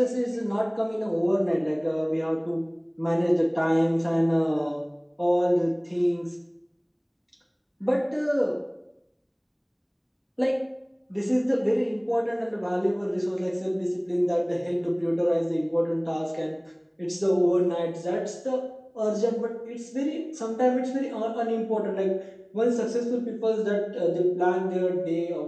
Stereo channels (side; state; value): both; identical; correlation 1.00